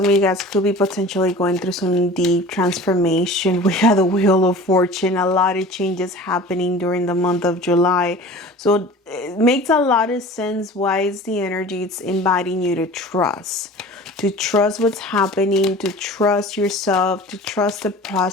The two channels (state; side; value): normal; both; correlation 0.40